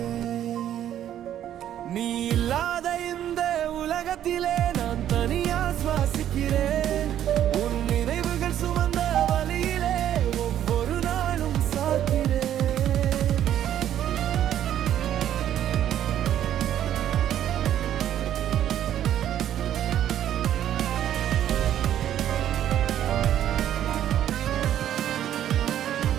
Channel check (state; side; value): quieter; left; 11.1 dB